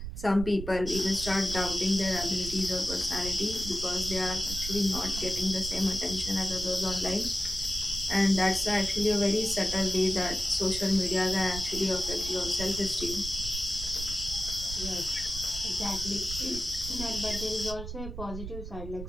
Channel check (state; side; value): noise; right; rumble, 8 dB below the sound